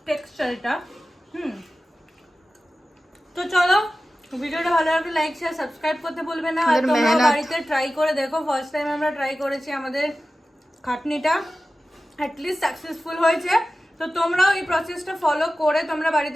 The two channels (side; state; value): both; normal; correlation 0.95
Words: টেক্সচার এটা। তো চলো, ভিডিওটা ভালো লাগলে লাইক শেয়ার সাবস্ক্রাইব করতে ভুলবে না। আর আমাদের তোমরা মেহনত। বাড়িতে ট্রাই করে দেখো। ফার্স্ট টাইম আমরা ট্রাই করেছি, আমাদের খাটনিটা অ্যাটলিস্ট সাকসেসফুল হয়েছে। তো তোমরাও এই প্রসেসটা ফলো করে তোমরা